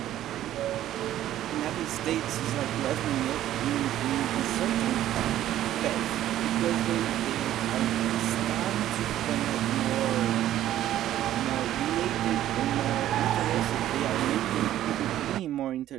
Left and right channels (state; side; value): quieter; left; 12.7 dB